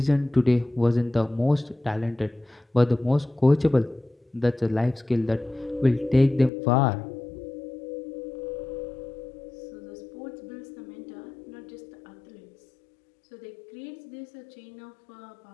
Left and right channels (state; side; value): drops out; right; at 6.5 s